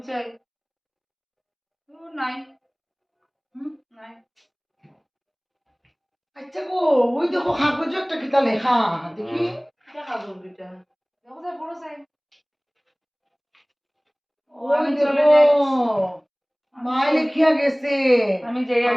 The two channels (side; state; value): both; identical; correlation 1.00